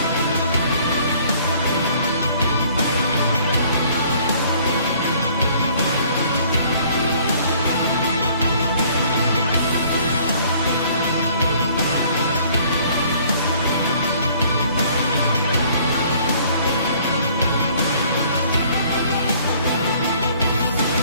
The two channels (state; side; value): inverted; both; correlation -0.58